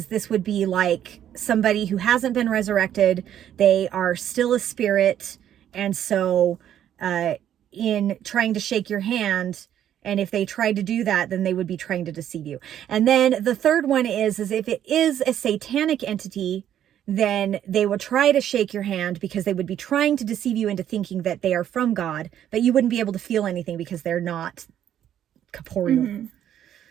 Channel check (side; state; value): left; quieter; 10.6 dB